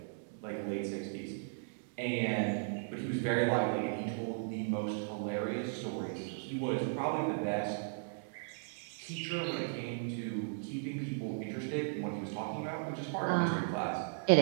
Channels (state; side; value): silent; left; digital silence